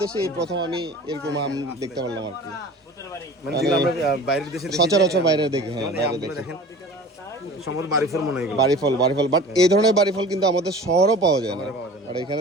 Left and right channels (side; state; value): both; normal; correlation 0.41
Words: দেশে এই প্রথম আমি এরকম আম দেখতে পারলাম আর কি। মানে যেগুলো আমরা বাইরের দেশে সচরাচর বাইরে দেখি। হ্যাঁ, বাইরে দেখি সম্ভবত বাড়িফল মনে হয় এগুলো। বাড়িফল বাট এই ধরনের বাড়িফল কিন্তু আমাদের শহরও পাওয়া যায় না। আর